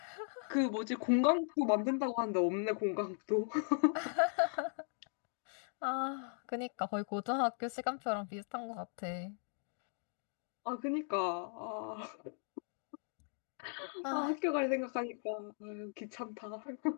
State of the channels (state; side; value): silent; right; 52 dB below the other